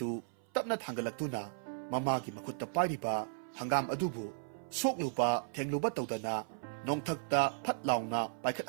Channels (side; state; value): left; silent; 54 dB below the other